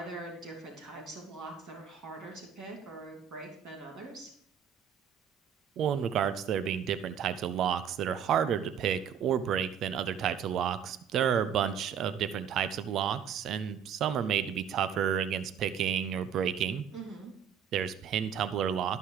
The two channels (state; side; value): quieter; left; 8.0 dB